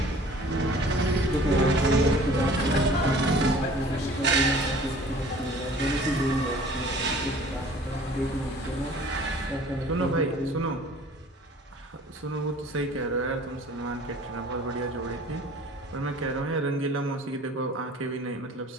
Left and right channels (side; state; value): both; normal; correlation 0.49